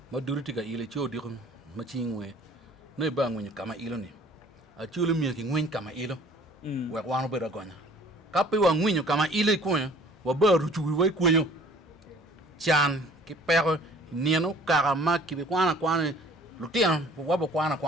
ma duriti ka ile cho di ma chingwe ne ba ngwe kama ilo ni a chulo mi ki ngwen kama ilo we wano be ragonya kape wa ngwen kama ile ko wa ba ruchu we ko yo chan ki pero nieno karama ki be kwana lutian wabo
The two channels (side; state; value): both; normal; correlation 0.53